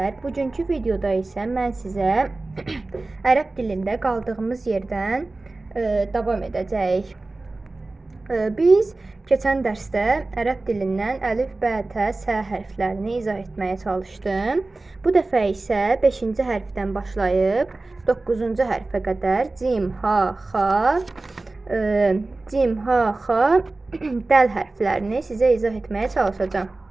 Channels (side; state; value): left; quieter; 3.2 dB